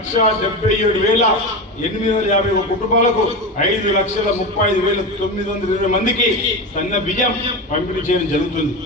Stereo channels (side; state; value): both; normal; correlation 0.21